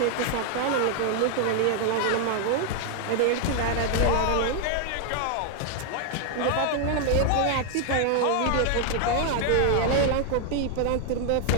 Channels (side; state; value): both; different; correlation 0.00